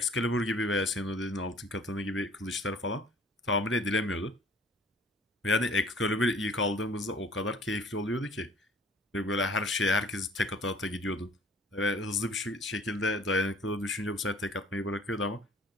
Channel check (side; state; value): both; normal; correlation 0.52